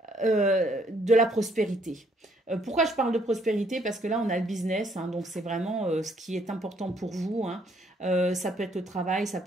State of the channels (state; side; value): normal; both; correlation 0.67